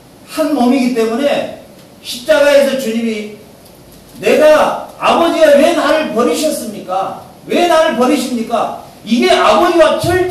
한 몸이기 때문에 십자가에서 주님이 내가 아버지가 왜 나를 버리셨습니까? 왜 나를 버리십니까? 이게 아버지와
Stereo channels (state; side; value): identical; both; correlation 1.00